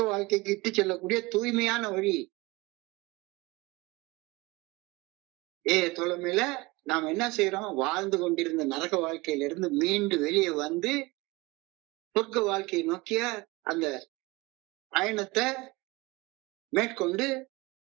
வாழ்க்கைக்கு இட்டு செல்லக்கூடிய தூய்மையான வழி. தோழமையில நாம் என்ன செய்யறோம்? வாழ்ந்து கொண்டிருந்த நரக வாழ்க்கையிலிருந்து மீண்டு வெளியே சொர்க்க வாழ்க்கையை நோக்கிய அந்த பயணத்தை மேற்கொண்டு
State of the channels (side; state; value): left; quieter; 22.7 dB